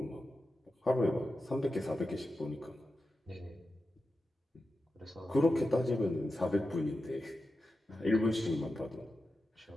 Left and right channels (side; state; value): both; normal; correlation 0.91